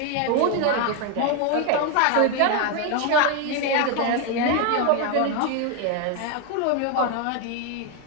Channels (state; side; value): different; both; correlation 0.01